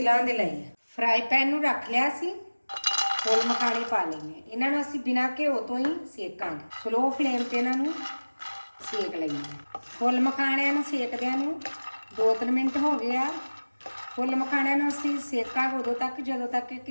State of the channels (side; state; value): both; inverted; correlation -1.00